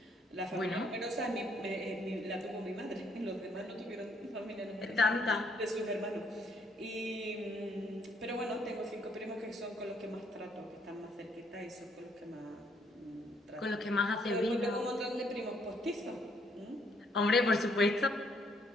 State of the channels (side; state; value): both; normal; correlation 0.69